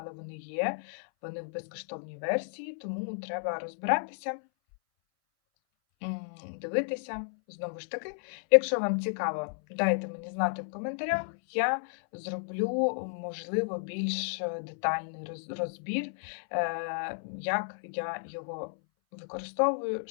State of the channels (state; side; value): silent; right; 56 dB below the other